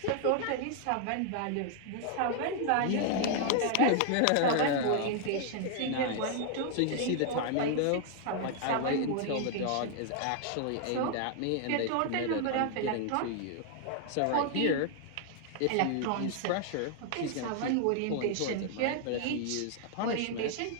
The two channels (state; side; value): different; both; correlation 0.00